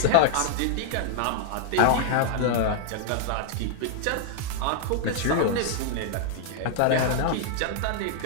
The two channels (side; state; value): both; different; correlation 0.00